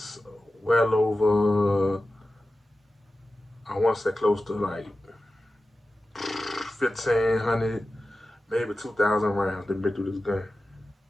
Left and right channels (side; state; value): both; normal; correlation 0.94